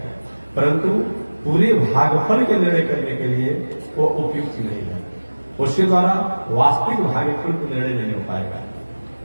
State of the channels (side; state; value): both; inverted; correlation -1.00